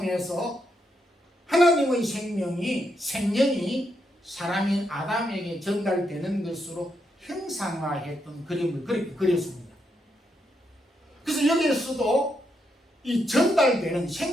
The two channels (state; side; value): normal; both; correlation 0.80